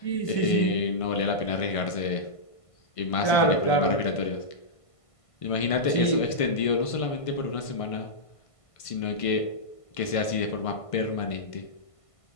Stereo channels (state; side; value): late; right; 1.5 ms